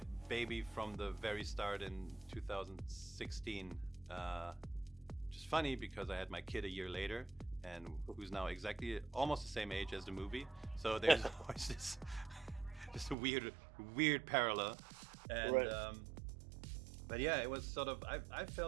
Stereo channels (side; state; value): left; drops out; at 13.2 s